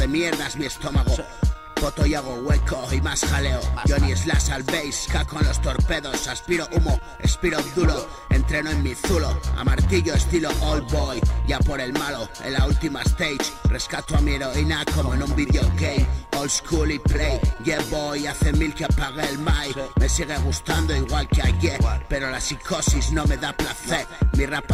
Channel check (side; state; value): both; identical; correlation 1.00